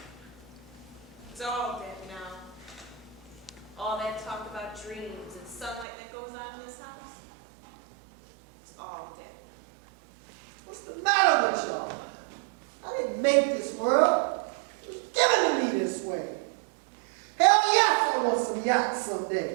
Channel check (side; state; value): left; drops out; at 5.9 s